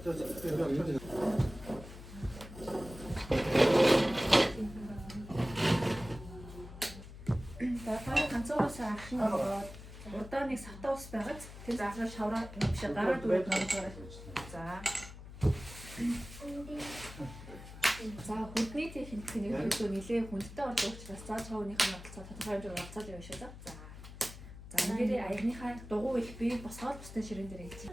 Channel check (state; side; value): noise; left; hum, 14 dB below the sound